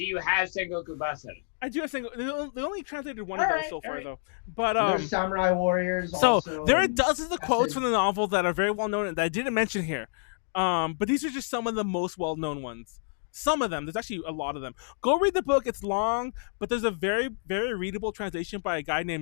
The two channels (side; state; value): right; silent; digital silence